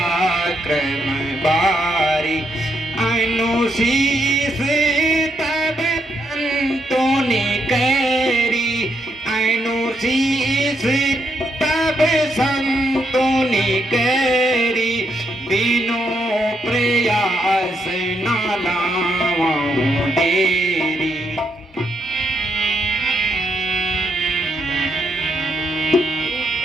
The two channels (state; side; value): normal; both; correlation 0.77